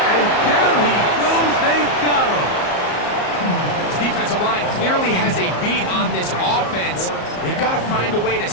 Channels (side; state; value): right; late; 34 ms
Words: and down he goes. They got him. This defensive line clearly has a beat on this offense. They've got to find a way to